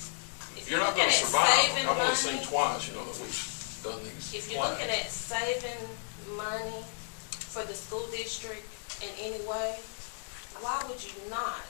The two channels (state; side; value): silent; right; digital silence